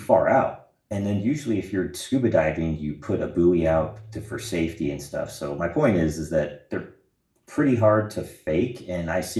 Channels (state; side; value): identical; both; correlation 1.00